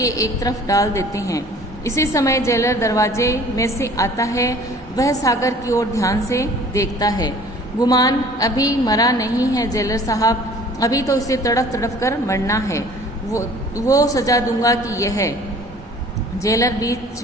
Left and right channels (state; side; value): normal; both; correlation 0.50